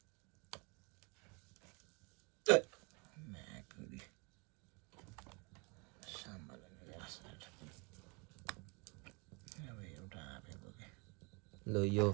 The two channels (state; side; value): quieter; left; 30.6 dB